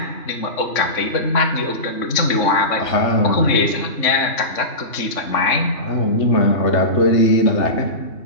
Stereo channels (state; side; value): late; right; 3.5 ms